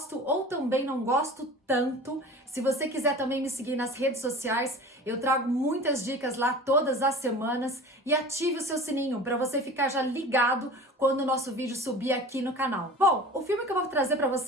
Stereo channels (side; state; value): both; normal; correlation 0.38